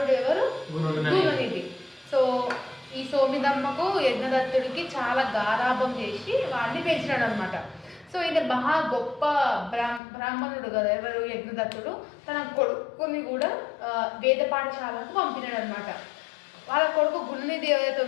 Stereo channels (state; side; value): drops out; right; at 10.0 s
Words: ఎవరు? గుణనిధి. సో ఈ సోమిదమ్మకు యజ్ఞదత్తుడికి చాలా గారాభం చేసి వాడిని పెంచినాడు అనమాట. సో ఇది మహా గొప్ప బ్రాహ్మణుడు కదా ఎవరు? యజ్ఞదత్తుడు. తన కొడుకుని కూడా వేద పాఠశాలకు పంపినాడు అనమాట. వాళ్ళ కొడుకు గుణనిధి ఎవరైతే